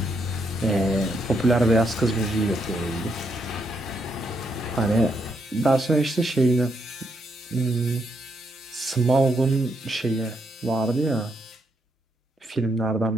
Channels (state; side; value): normal; both; correlation 0.77